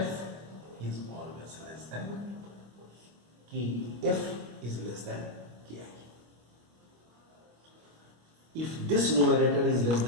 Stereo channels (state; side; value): late; left; 25 ms